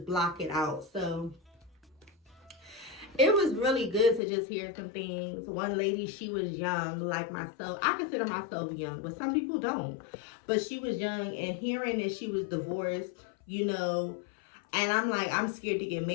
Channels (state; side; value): drops out; right; at 4.2 s